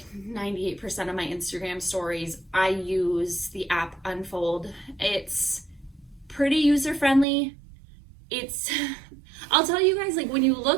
98% of my Instagram stories. I use the app Unfold. It's pretty user-friendly. I'll tell you guys, like when you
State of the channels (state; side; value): drops out; left; at 7.2 s